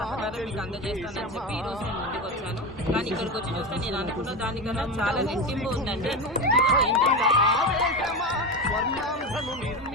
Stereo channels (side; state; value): both; normal; correlation 0.20